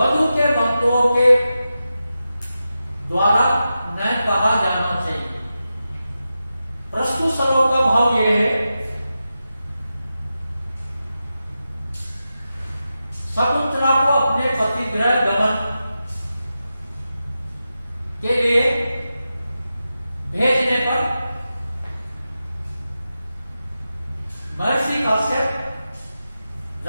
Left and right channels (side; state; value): both; inverted; correlation -0.91